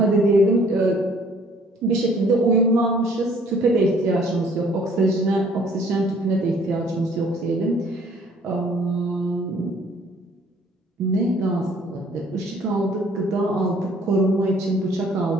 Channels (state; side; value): normal; both; correlation 0.58